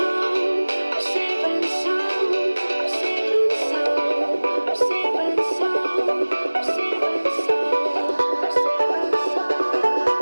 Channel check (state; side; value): inverted; both; correlation -1.00